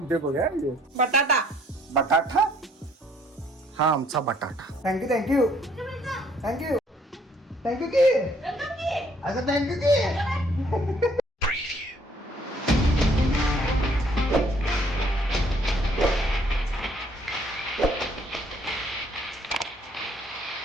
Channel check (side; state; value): both; normal; correlation 0.63